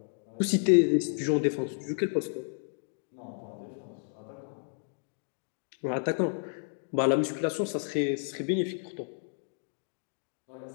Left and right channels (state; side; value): silent; right; 57 dB below the other